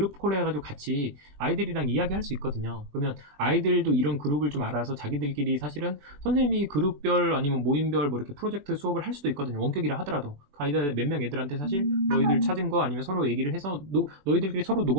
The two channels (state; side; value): late; left; 21 ms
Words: 콜 해가지고 같이 아이들이랑 이야기할 수 있거든요. 그러면 아이들도 이런 그룹을 좀 알아서 자기들끼리 사실은 선생님이 그룹별 아니면 모임별 뭐 이렇게 프로젝트 수업을 할 수도 있거든요. 원격이라 하더라도 아이들 몇 명 애들한테 사실 너희들 찾은 거 아니면 서로 얘기를 해서 너희들끼리 서로